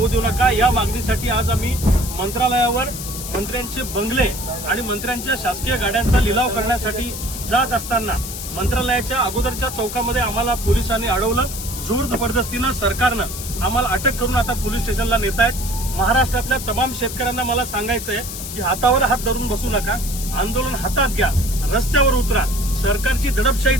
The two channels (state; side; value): noise; left; hiss, 8 dB below the sound